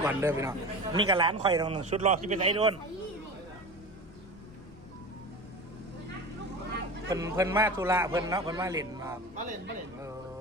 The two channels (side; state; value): left; noise; rumble, 23 dB below the sound